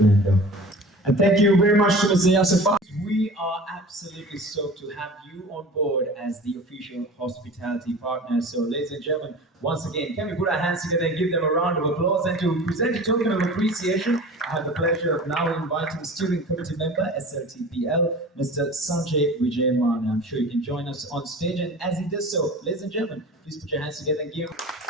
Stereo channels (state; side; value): normal; both; correlation 0.39